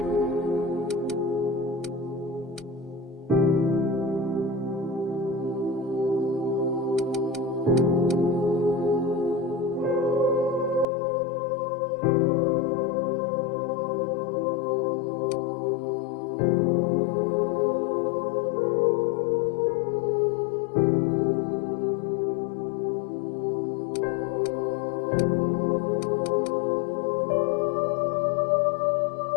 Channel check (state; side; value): drops out; right; at 10.9 s